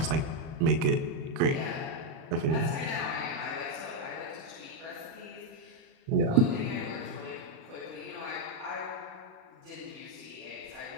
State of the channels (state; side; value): late; left; 37 ms